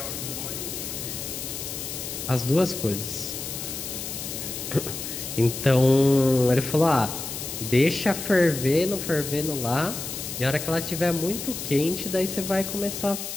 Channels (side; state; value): left; noise; hiss, 7 dB below the sound